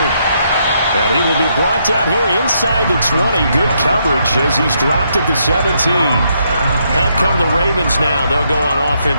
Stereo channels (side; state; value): both; inverted; correlation -0.76